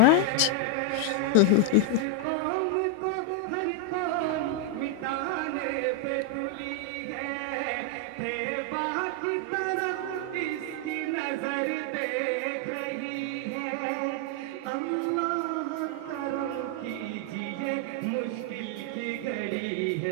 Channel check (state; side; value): different; both; correlation 0.00